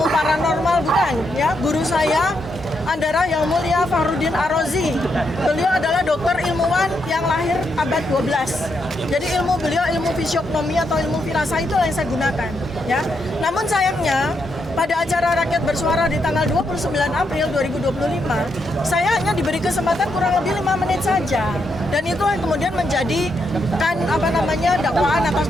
paranormal, bukan ya. Guru saya Andara Yang Mulia Fahrudin Arozi, beliau adalah dokter ilmuwan yang lahir abad 12. Jadi ilmu beliau ilmu fisiognomi atau ilmu firasah itu yang saya gunakan ya. Namun sayangnya pada acara Rakyat Bersuara di tanggal 29 April 2025, saya hanya diberi kesempatan kurang lebih 5 menit saja. Dan itu yang kemudian menjadi dakwaan atas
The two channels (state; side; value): normal; both; correlation 0.80